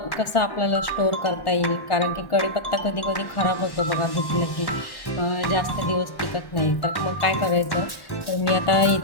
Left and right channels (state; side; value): late; right; 1.1 ms